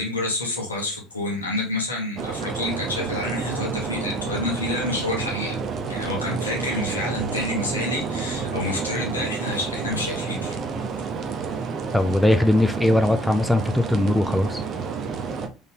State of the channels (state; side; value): normal; both; correlation 0.54